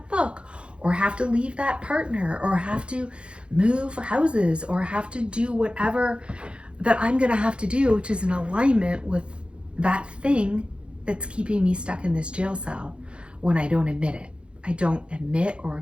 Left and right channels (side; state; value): left; late; 0.057 ms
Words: book, or have to leave that partner, or have to move houses, or have to do whatever that I'm going to have to do, which is in alignment with that thing that's keeping me stuck in this jail cell when I don't admit it. I don't admit or